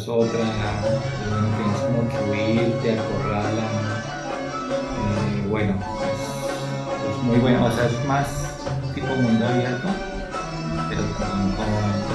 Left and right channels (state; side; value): identical; both; correlation 1.00